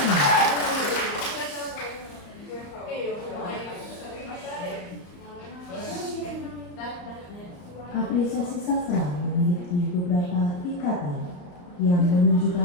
apresiasi sastra memiliki beberapa tingkatan yang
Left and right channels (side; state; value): right; late; 34 ms